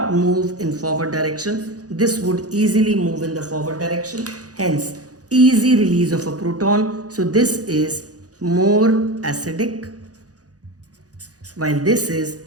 move in forward direction. This would easily move in the forward direction. Hence, easy release of a proton. So this is more acidic, while this is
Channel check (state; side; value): late; left; 0.67 ms